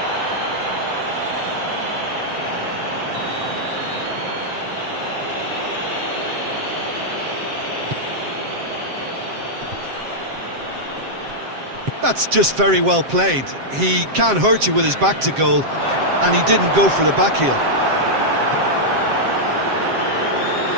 That's just very well played. He can't hurt you with his back to goal, and he didn't go for the back heel.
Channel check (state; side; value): late; left; 7.6 ms